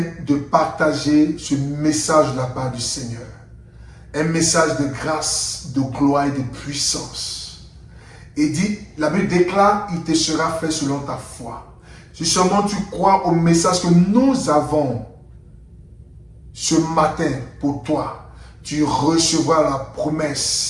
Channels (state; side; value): identical; both; correlation 1.00